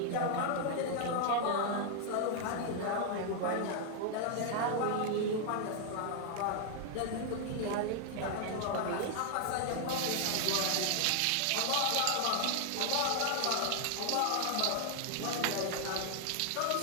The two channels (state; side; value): different; both; correlation 0.00